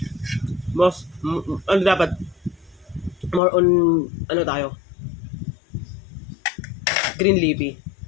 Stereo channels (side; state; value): right; drops out; at 3.4 s